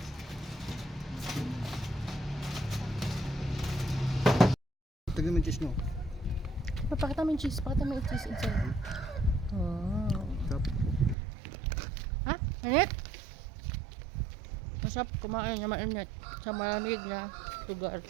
Tignan mo yung cheese nyo. Pakita mo yung cheese. Pakita mo yung cheese inside. Oh. Sarap. Ha? Init? Masarap kumain na mainit sa malamig na lugar.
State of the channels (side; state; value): left; drops out; at 11.2 s